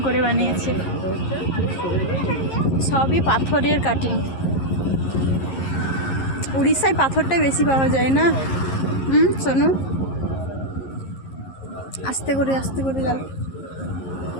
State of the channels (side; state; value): right; late; 11 ms